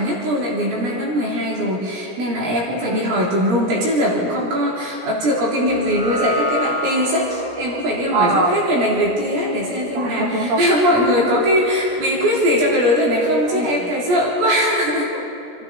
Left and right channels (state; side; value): late; left; 17 ms